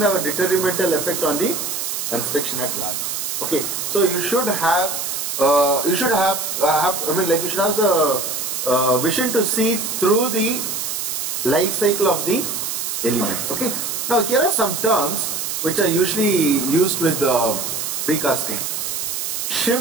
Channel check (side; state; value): right; noise; hiss, 3 dB below the sound